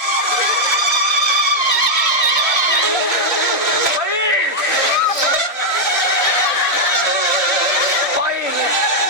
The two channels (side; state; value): right; late; 1.5 ms